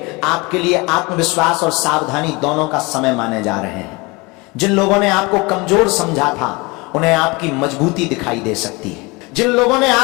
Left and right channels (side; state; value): right; quieter; 25.7 dB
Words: आपके लिए आत्मविश्वास और सावधानी दोनों का समय माने जा रहे हैं। जिन लोगों ने आपको कमजोर समझा था, उन्हें आपकी मजबूती दिखाई दे सकती है। जिन लोगों ने